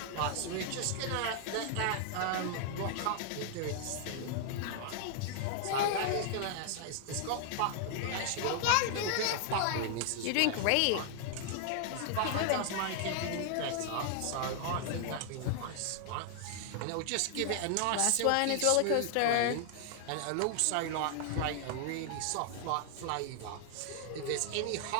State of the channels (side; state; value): both; different; correlation 0.00